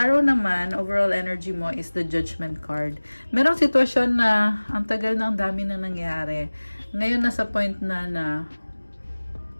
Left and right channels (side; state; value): both; inverted; correlation -1.00